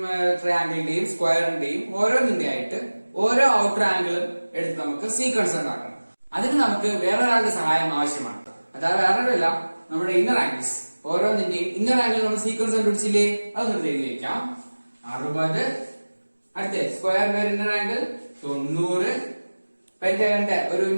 ട്രയാംഗിളിന്റെയും സ്ക്വയറിന്റെയും ഓരോന്നിന്റെ ആയിട്ട് ഓരോ ഔട്ടർ ആംഗിളും എടുത്ത് നമുക്ക് സീക്വൻസ് ഉണ്ടാക്കണം. അതിന് നമുക്ക് വേറൊരാളുടെ സഹായം ആവശ്യമാണ്. അതായത് വേറൊരല്ല, നമ്മുടെ ഇന്നർ ആംഗിൾസ് ഓരോന്നിന്റെയും ഇന്നർ ആംഗിൾ നമ്മൾ സീക്വൻസ് കണ്ടുപിടിച്ചില്ലേ, അതൊന്ന് എഴുതി വെക്കാം. 60, അടുത്ത സ്ക്വയറിന്റെ ഒരു ഇന്നർ ആംഗിൾ 90, പെന്റഗണിന്റെ ഒരു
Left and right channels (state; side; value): inverted; both; correlation -1.00